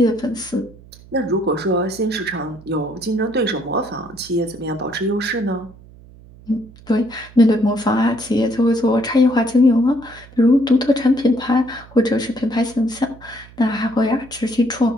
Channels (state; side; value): noise; right; hum, 22 dB below the sound